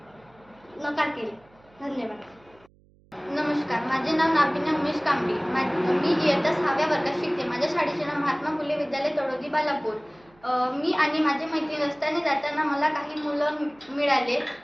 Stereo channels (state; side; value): noise; right; hum, 30 dB below the sound